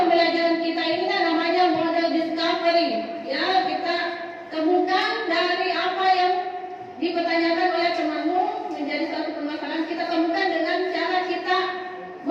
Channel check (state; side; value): identical; both; correlation 1.00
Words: kita ini namanya model discovery. Ya, kita temukan dari apa yang dipertanyakan oleh temanmu menjadi satu permasalahan. Kita temukan dengan cara kita